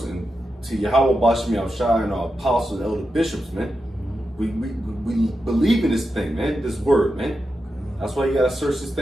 and to Yahweh Bashmi Al-Shai and our apostles and elder bishops, man. We believe in this thing, man. This word, man. That's why you gotta search this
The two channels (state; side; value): normal; both; correlation 0.89